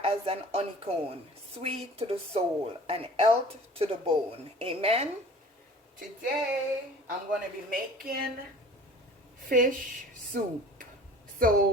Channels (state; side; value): normal; both; correlation 0.45